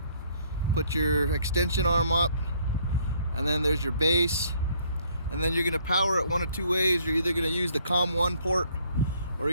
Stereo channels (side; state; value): both; inverted; correlation -0.64